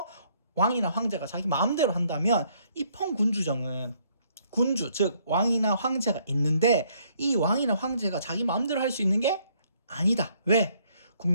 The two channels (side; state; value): both; inverted; correlation -0.67